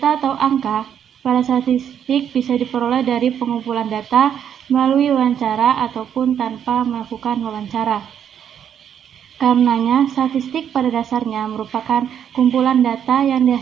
atau angka pada statistik bisa diperoleh dari pengumpulan data melalui wawancara ataupun tanpa melakukan wawancara. Karenanya, statistik pada dasarnya merupakan kumpulan data yang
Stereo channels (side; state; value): left; quieter; 8.9 dB